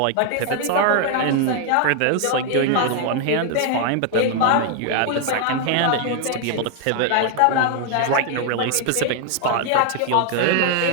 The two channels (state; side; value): different; both; correlation 0.00